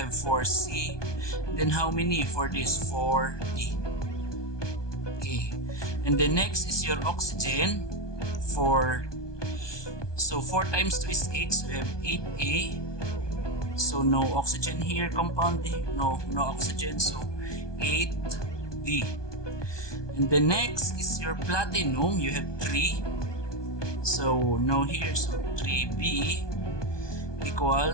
4C. And then how many for this? 4D. Okay. And then next is your oxygen. So 4 times 2 is 8, so you have 8A. So no oxygen here, compound A. No oxygen, so 8D. And the next is your platinum. You have 3. So no here, so 3B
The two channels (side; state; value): right; late; 1.2 ms